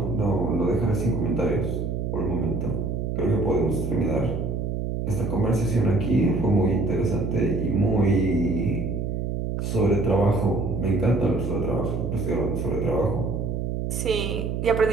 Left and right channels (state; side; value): noise; right; hum, 2 dB below the sound